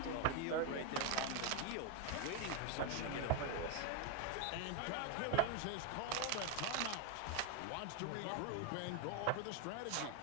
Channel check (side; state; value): both; different; correlation 0.01